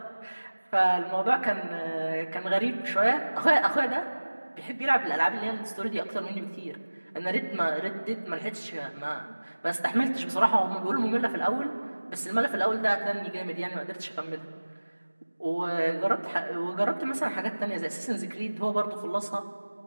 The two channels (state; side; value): inverted; both; correlation -1.00